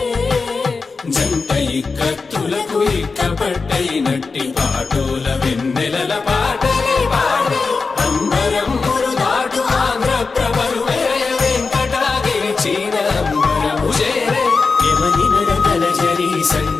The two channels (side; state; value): right; quieter; 4.4 dB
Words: జంట ఇక్కత్తులకు ఇక్కపట్టైనట్టి పాటోల వెన్నెలల పాటలే పాడే అంబరమ్ములు దాటు ఆంధ్ర ప్రభలు వేయ వెంకటాగిరి చీన అంబరము చేరే యమనినరతలజరి